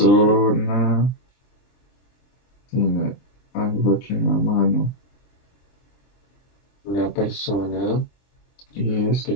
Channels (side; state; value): right; late; 23 ms